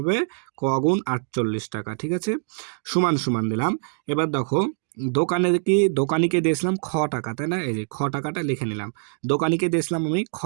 ক গুণ 48 টাকা, ঠিক আছে? সমান সমান দিলাম। এবার দেখো দোকানিকে দিয়েছিলাম খ টাকা, তাই না? এই যে খ টাকাটা লিখে নিলাম, দোকানিকে দিয়েছিলাম আমি খ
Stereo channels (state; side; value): silent; left; 63 dB below the other